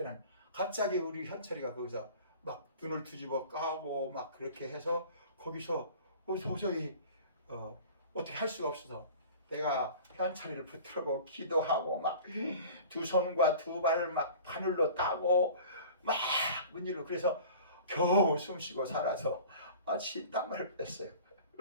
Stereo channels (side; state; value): both; inverted; correlation -0.42